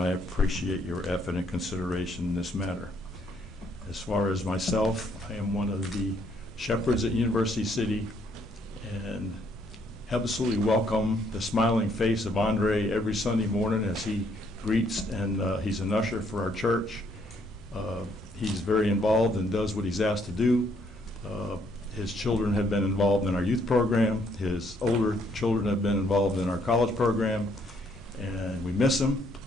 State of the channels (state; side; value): normal; both; correlation 0.69